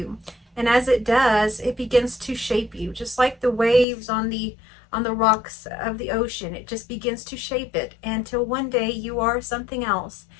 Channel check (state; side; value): drops out; right; at 3.9 s